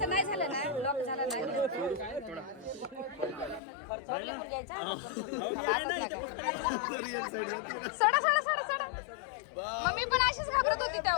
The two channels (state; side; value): drops out; right; at 3.6 s